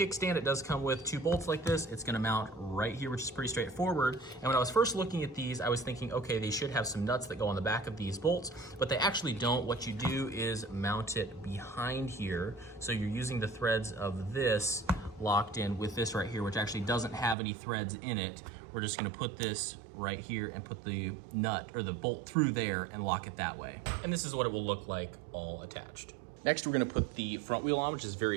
It does come with two bolts like this. It's going to mount right here, which is pretty straightforward. And when I was first looking at these, I was thinking, okay, they should have some nuts that go on the back of these bolts, but they actually don't. What you do is mount it behind here. So you're using the threads of this locked in with this right here, which actually doesn't have any threads in it. We're just gonna put this right here and put the nut or the bolt through there and lock it that way. And this is what it will look like all attached. Next, we're gonna put the front wheel on, which is very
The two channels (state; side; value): drops out; left; at 17.4 s